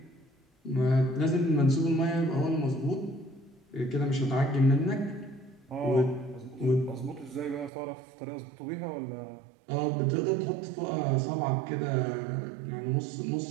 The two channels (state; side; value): drops out; left; at 7.7 s